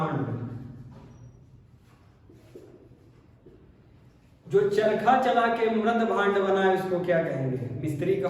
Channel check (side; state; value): both; identical; correlation 1.00